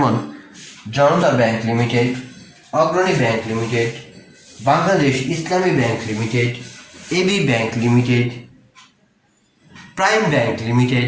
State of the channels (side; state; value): both; identical; correlation 1.00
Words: Janata bank limited, Agrani bank limited, Bangladesh Islami bank limited, AB bank limited, prime bank